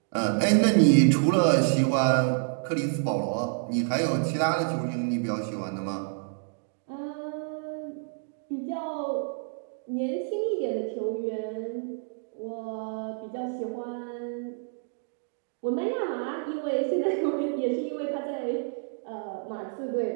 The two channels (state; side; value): silent; left; digital silence